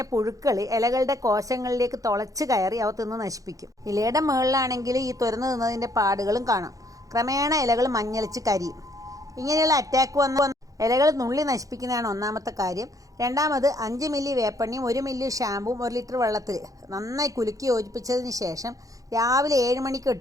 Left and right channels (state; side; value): late; left; 0.17 ms